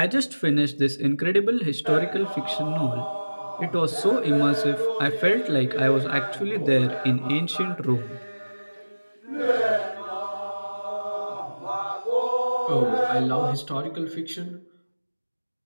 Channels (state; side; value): inverted; both; correlation -1.00